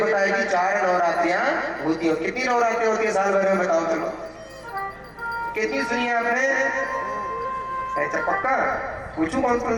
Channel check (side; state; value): both; identical; correlation 1.00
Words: है कि 4 नवरात्रियां होती हैं। कितनी नवरात्रियां होती है साल भर में बताओ? चलो कितनी सुनी है आपने? ऐसा पक्का पूछूं कौन कौन